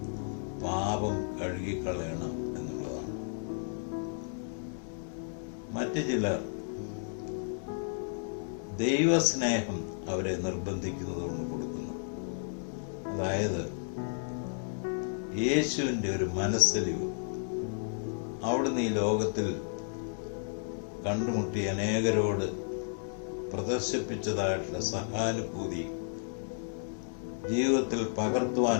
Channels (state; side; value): silent; right; digital silence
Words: പാപം കഴുകിക്കളയണം എന്നുള്ളതാണ്. മറ്റു ചിലർ ദൈവസ്നേഹം അവരെ നിർബന്ധിക്കുന്നത് കൊണ്ട് കൊടുക്കുന്നു. അതായത് യേശുവിന്റെ ഒരു മനസ്സലിവ്, അവിടുന്ന് ഈ ലോകത്തിൽ കണ്ടുമുട്ടി അനേകരോട് പ്രദർശിപ്പിച്ചതായിട്ടുള്ള സഹാനുഭൂതി ജീവിതത്തിൽ